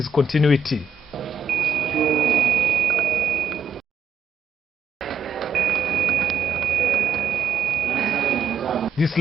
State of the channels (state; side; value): quieter; left; 4.5 dB